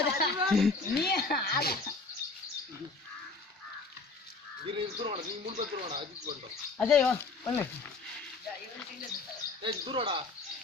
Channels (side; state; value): right; quieter; 3.9 dB